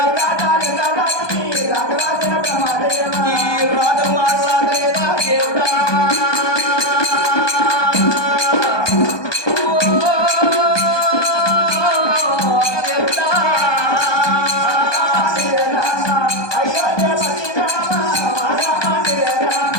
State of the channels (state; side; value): late; right; 1.2 ms